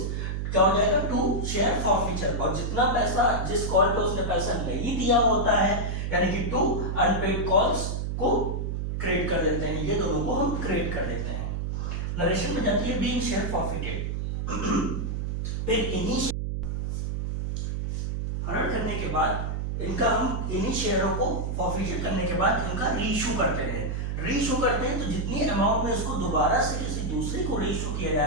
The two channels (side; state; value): right; noise; hum, 2 dB below the sound